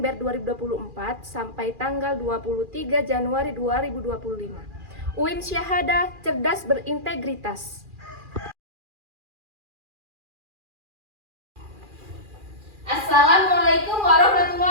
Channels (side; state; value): left; late; 2.4 ms